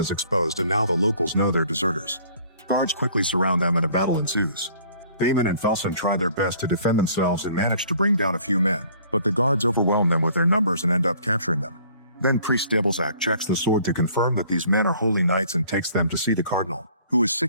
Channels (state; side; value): inverted; both; correlation -0.55